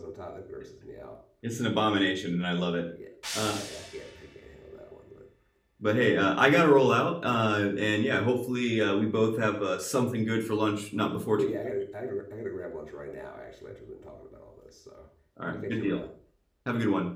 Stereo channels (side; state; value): both; identical; correlation 1.00